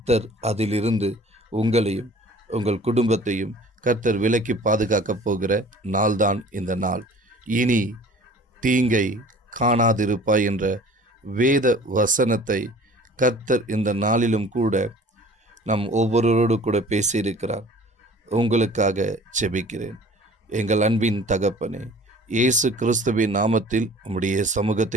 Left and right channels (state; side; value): normal; both; correlation 0.47